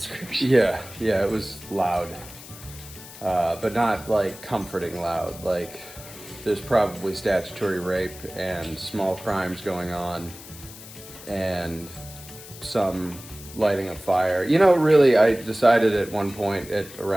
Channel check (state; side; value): noise; left; hiss, 16 dB below the sound